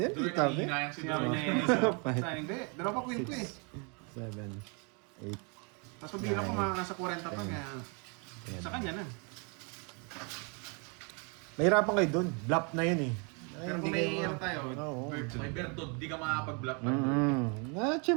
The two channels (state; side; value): quieter; left; 34.7 dB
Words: Duroy, Tabi. nangihinayang si Sinabi Duroy. niya sa hindi. Dalawa pa queen ko eh. 7, 8. Tapos pabila ko mga nasa 40 pa kaya sa kanya na. Mahirapan kayo dun. Bluff na yun eh. Ay, Pero hindi kung may kayo- ano tayo, Oo. May Bertod, di ka makapag-block na.